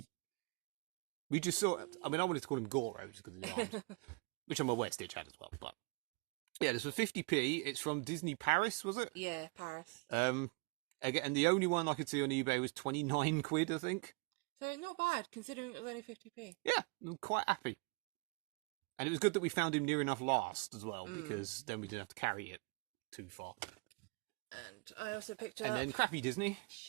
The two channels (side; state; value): left; quieter; 30.5 dB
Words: We just saw it. I mean, I wanted to call him Goro just because of the arms, which I'm aware Stitch had as well. But yeah, this was 50p. It's from Disney Paris, was it? Yeah, Paris. Again, and the only one I could see on eBay was 29 quid, I think. So not bad, considering it was only 50p. Yeah, I'm quite happy. And it was good that we found him near enough last as well, because then we didn't have to carry it too far. And I also picked up... And then crappy Disney.